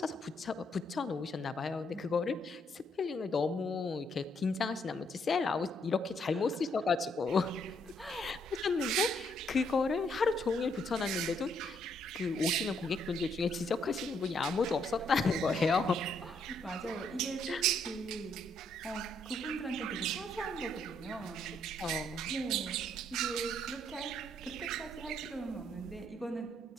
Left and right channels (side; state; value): both; normal; correlation 0.72